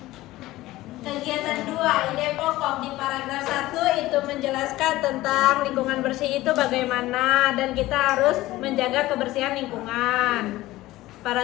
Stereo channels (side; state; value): right; quieter; 17.2 dB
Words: Kegiatan 2, ide pokok di paragraf 1 itu menjelaskan tentang lingkungan bersih itu bagaimana dan kita harus menjaga kebersihan lingkungan.